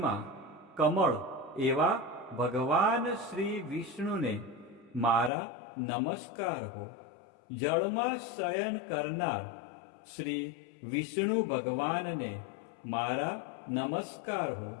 કમળ એવા ભગવાન શ્રી વિષ્ણુને મારા નમસ્કાર હો. જળમાં શયન કરનાર શ્રી વિષ્ણુ ભગવાનને મારા નમસ્કાર હો.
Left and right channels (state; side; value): drops out; right; at 5.3 s